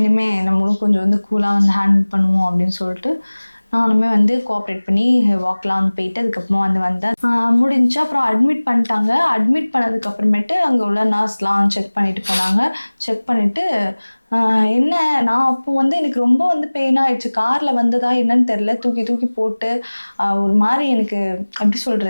நம்மளும் கொஞ்சம் வந்து கூலாக வந்து ஹேண்டில் பண்ணுவோம் அப்படின்னு சொல்லிட்டு நானுமே வந்து கோஆப்ரேட் பண்ணி வாக்லாம் வந்து போயிட்டு அதுக்கப்புறமா வந்தேன். முடிஞ்சு அப்புறம் அட்மிட் பண்ணிட்டாங்க. அட்மிட் பண்ணதுக்கப்புறமேட்டு அங்கே உள்ள நர்ஸ்லாம் செக் பண்ணிட்டு போனாங்க. செக் பண்ணிவிட்டு என்ன நான் அப்போ வந்து எனக்கு ரொம்ப வந்து பெயின் ஆகிடுச்சு. காரில் வந்ததா என்னன்னு தெரில, தூக்கி போட்டு ஒரு மாதிரி எனக்கு எப்படி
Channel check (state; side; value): inverted; both; correlation -1.00